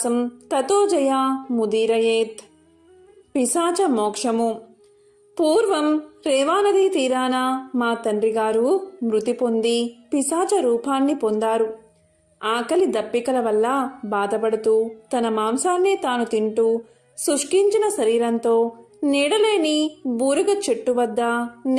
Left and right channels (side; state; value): both; identical; correlation 1.00